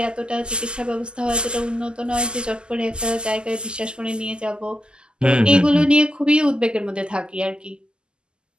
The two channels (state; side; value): late; left; 0.048 ms